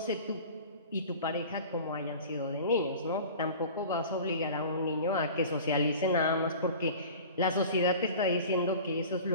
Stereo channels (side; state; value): both; inverted; correlation -0.40